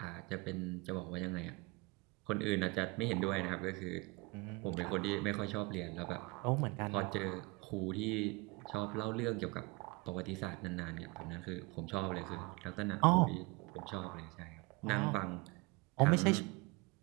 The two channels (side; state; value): left; quieter; 26.0 dB